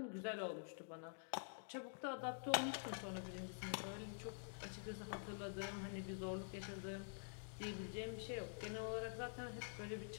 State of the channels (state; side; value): silent; right; digital silence